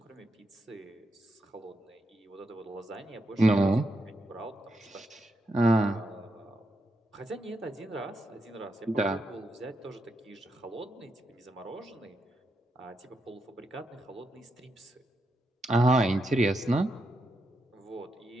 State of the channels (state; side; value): normal; both; correlation 0.83